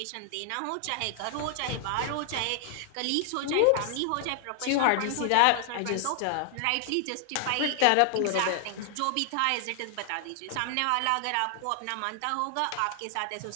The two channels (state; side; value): different; both; correlation 0.00